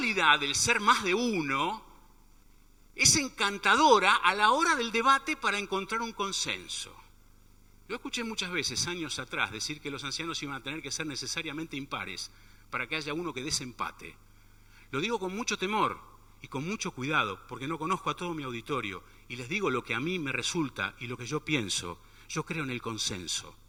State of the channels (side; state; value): both; identical; correlation 1.00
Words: del ser más de uno es encantadora a la hora del debate para encontrar un consenso. Yo escuché muchas veces, años atrás, decir que los ancianos iban a tener que ser necesariamente impares para que haya uno que desempate. Lo digo con mucho temor y con mucho cuidado, porque no conozco a todo mi auditorio, y les digo lo que a mí me resulta y lo que yo pienso. Yo creo en el consenso.